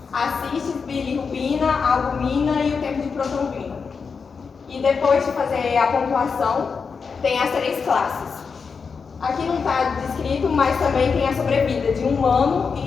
a cistis, bilirrubina, a albumina e o tempo de protrombina. E depois de fazer a pontuação, tem as 3 classes. Aqui não está descrito, mas também tem a sobrevida de 1 ano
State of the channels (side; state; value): right; quieter; 5.4 dB